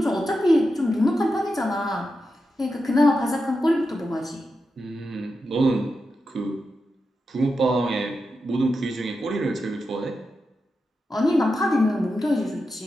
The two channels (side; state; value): both; normal; correlation 0.89